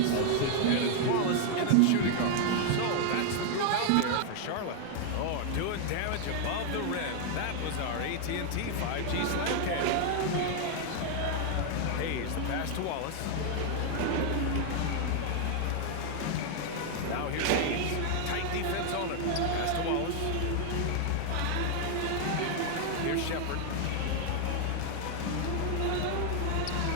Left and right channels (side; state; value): both; different; correlation 0.00